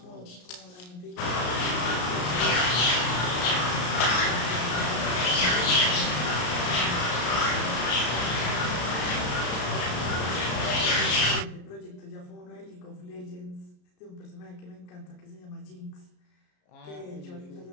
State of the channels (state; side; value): late; right; 33 ms